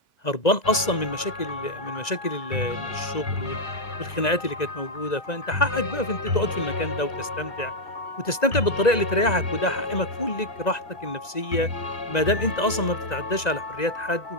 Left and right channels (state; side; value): late; right; 1.9 ms